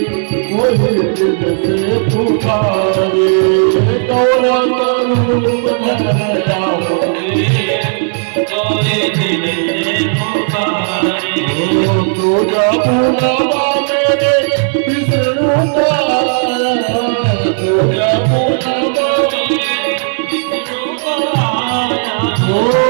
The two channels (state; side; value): silent; left; digital silence